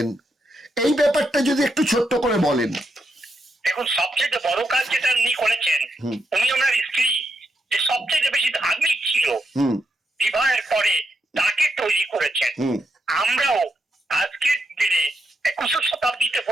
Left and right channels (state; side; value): normal; both; correlation 0.82